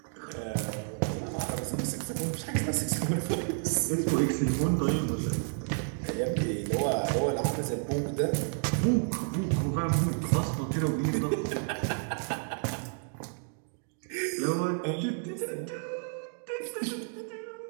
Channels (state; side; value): silent; left; 57 dB below the other